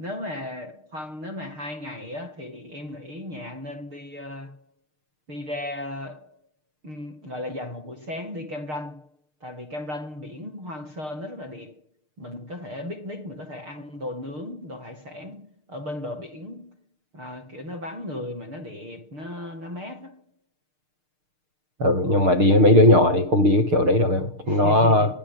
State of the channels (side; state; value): left; late; 6.6 ms